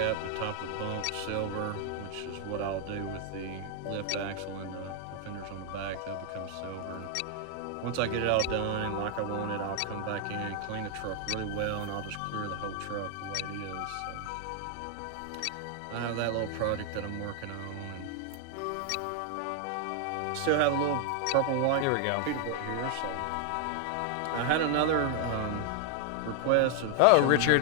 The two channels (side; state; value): both; different; correlation 0.00